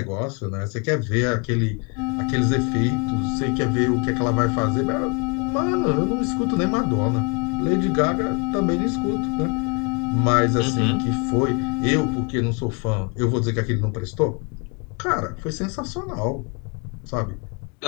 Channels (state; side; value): quieter; right; 33.6 dB